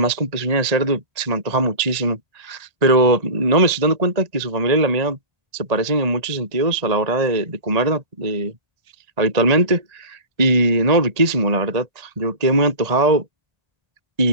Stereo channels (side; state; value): left; late; 1.8 ms